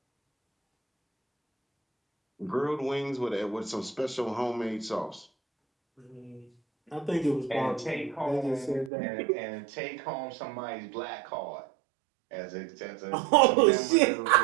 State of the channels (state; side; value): drops out; left; at 8.9 s